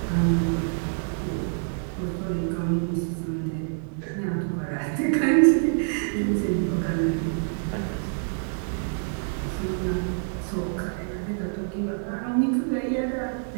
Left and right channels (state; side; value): silent; left; 61 dB below the other